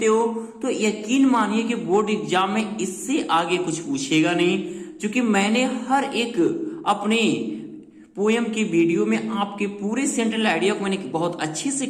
हो तो यकीन मानिए कि बोर्ड एग्जाम में इससे आगे कुछ पूछेगा नहीं, क्योंकि मैंने हर एक अपने पोएम की वीडियो में आपके पूरे सेंट्रल आइडिया को मैंने बहुत अच्छे से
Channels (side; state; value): both; identical; correlation 1.00